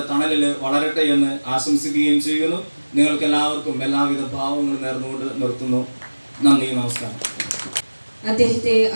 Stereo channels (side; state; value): both; inverted; correlation -1.00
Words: തണലിൽ വളരട്ടെ എന്ന് ആശംസിക്കുകയും ചെയ്യുന്നു. നിങ്ങൾക്ക് എല്ലാവർക്കും എല്ലാവിധ ഭാവങ്ങളും നേർന്നുകൊണ്ട് നിർത്തുന്നു. നന്ദി, നമസ്കാരം. അദ്ദേഹത്തെ